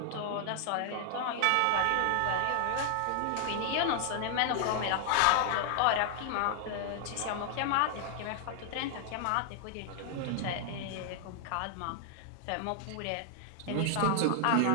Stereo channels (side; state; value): both; different; correlation 0.00